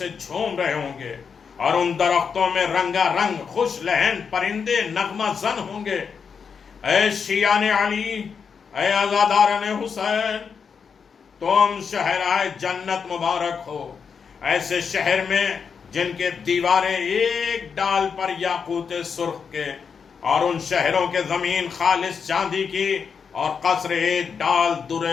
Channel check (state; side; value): quieter; right; 6.2 dB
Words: جھوم رہے ہوں گے، اور ان درختوں میں رنگا رنگ خوش لہن پرندے نغمہ زن ہوں گے۔ اے شیعان علی، اے عزاداران حسین، تم شہرائے جنت مبارک ہو، ایسے شہر میں جن کے دیواریں ایک ڈال پر یاقوت سرخ کے، اور ان شہروں کے زمین خالص چاندی کی، اور قصر ایک ڈال